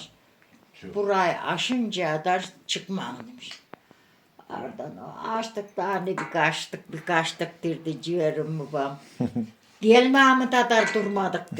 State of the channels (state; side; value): identical; both; correlation 1.00